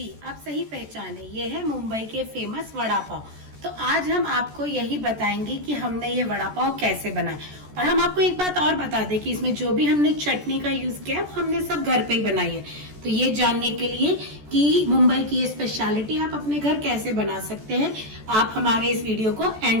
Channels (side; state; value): left; late; 14 ms